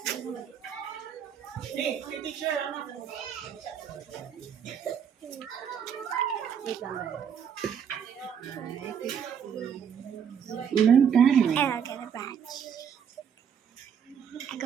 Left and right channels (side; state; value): left; quieter; 7.8 dB